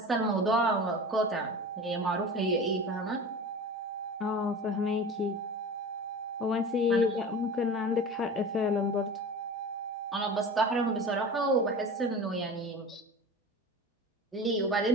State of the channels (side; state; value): both; normal; correlation 0.35